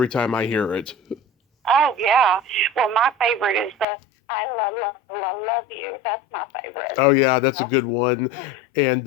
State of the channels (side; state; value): right; drops out; at 3.9 s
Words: time I hear it. Oh, yeah. Well, my favorite is the I love you. That's my favorite. Oh, yeah, that's a good one.